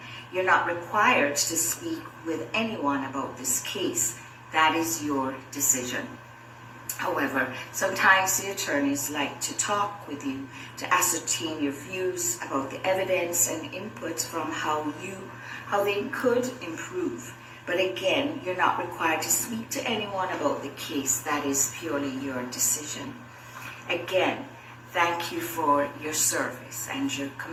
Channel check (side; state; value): both; identical; correlation 1.00